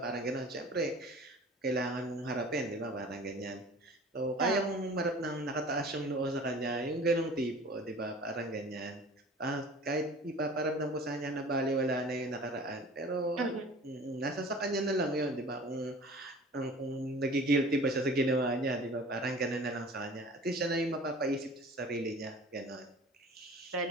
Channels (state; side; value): normal; both; correlation 0.43